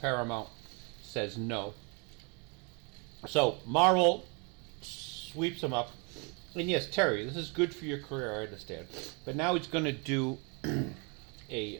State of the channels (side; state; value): left; quieter; 33.1 dB